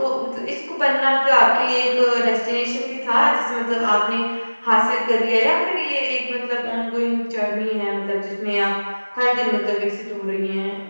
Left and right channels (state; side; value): inverted; both; correlation -1.00